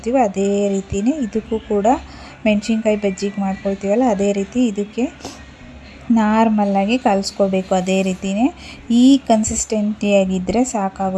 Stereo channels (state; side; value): identical; both; correlation 1.00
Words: ಅದೇ ರೀತಿಯೇ ಇದಕ್ಕೂ ಕೂಡ ಮೆಣಸಿನ್ಕಾಯಿ ಬಜ್ಜಿಗೆ ಮಾಡ್ಕೊಳ್ತೀವಲ್ಲ ಅದೇ ರೀತಿ ಇದಕ್ಕೆ ನಾರ್ಮಲ್ಲಾಗಿ ಕಲಿಸ್ಕೋಬೇಕು. ಅದೇ ರೀತಿಯೇ ಈ ಕನ್ಸಿಸ್ಟೆನ್ಸಿಯಾಗಿದ್ದರೆ